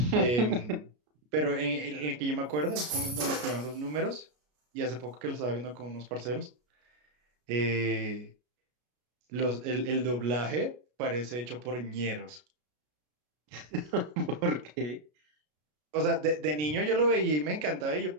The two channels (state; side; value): late; left; 33 ms